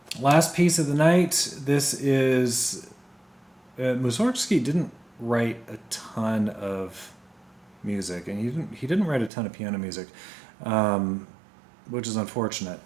Last piece of the night. This is Mussorgsky didn't write a ton of music, and he didn't write a ton of piano music, which is unfortunate.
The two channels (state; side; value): drops out; left; at 9.3 s